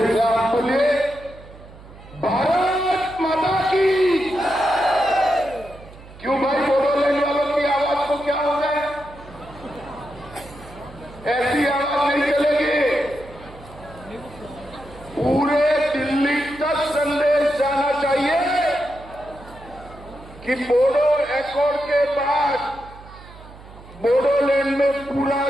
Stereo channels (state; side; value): noise; right; hum, 19 dB below the sound